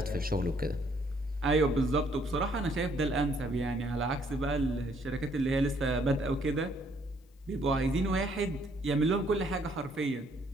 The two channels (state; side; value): normal; both; correlation 0.66